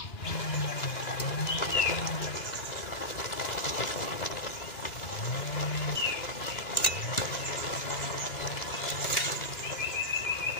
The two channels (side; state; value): right; late; 2.9 ms